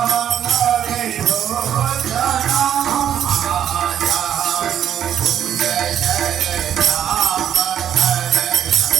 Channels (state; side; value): quieter; left; 9.8 dB